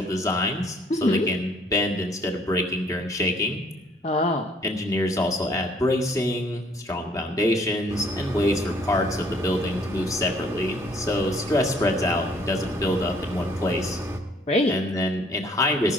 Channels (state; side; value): normal; both; correlation 0.61